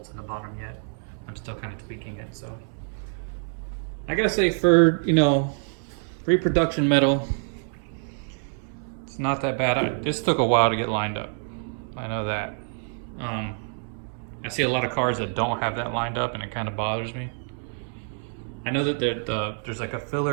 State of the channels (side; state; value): left; silent; 61 dB below the other